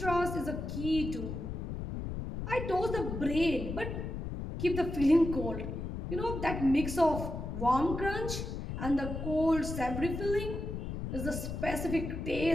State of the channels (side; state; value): left; noise; rumble, 5 dB below the sound